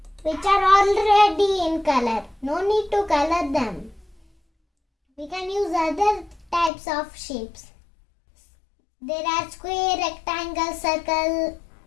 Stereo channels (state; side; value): drops out; right; at 6.7 s